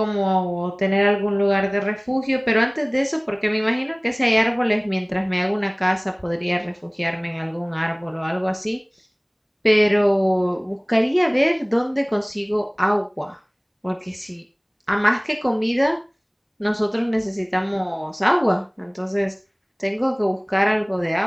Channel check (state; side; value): identical; both; correlation 1.00